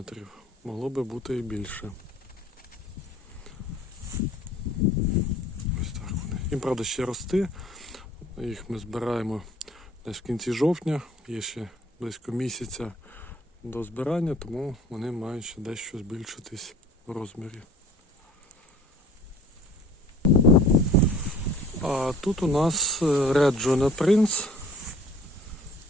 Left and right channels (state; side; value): normal; both; correlation 0.50